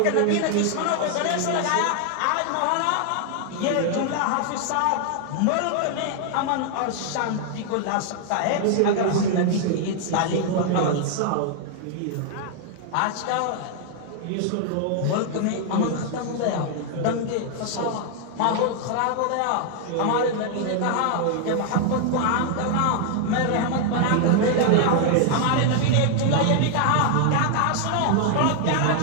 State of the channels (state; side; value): different; both; correlation 0.00